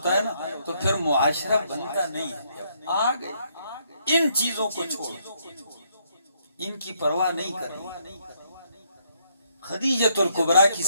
ہے نا تو پھر معاشرہ بنتا نہیں ہے۔ آگے ان چیزوں کو چھوڑ، ان کی پرواہ نہیں کرنی۔ خدیجہ الکبریٰ کی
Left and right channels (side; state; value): both; inverted; correlation -0.72